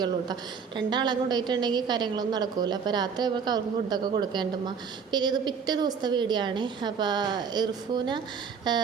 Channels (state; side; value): quieter; left; 6.3 dB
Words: കേട്ടോ. 2 ആളെ കൊണ്ടുപോയിട്ടുണ്ടെങ്കിൽ കാര്യങ്ങളൊന്നും നടക്കില്ല. അപ്പോൾ രാത്രി ആകുമ്പോൾ അവർക്ക് ഫുഡൊക്കെ കൊടുക്കേണ്ടുമ്മ. പിന്നെ ഇത് പിറ്റേ ദിവസത്തെ വീഡിയോ ആണ്. അപ്പോൾ